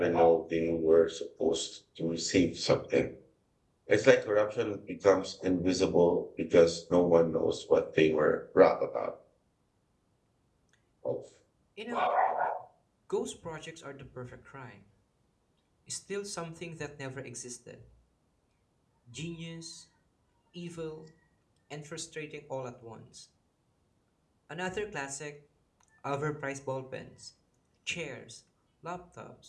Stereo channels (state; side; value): identical; both; correlation 1.00